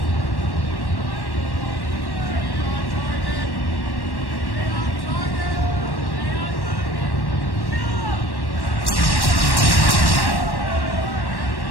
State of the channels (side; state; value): right; late; 1.1 ms